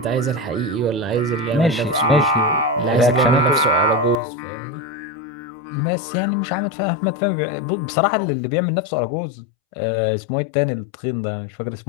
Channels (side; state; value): right; drops out; at 4.2 s